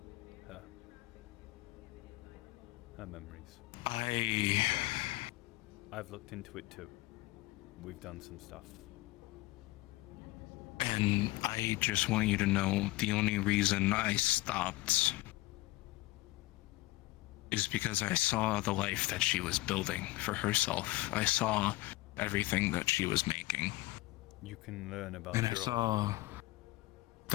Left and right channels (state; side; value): quieter; right; 19.6 dB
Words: her. Her memories. I've looked into it too. We've done some stuff. And I just want you to know the only reason I stopped is because I saw the life that she was building for herself. I saw everything that she was making. You can learn about And I saw